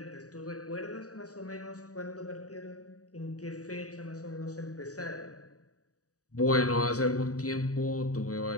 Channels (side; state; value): right; late; 0.66 ms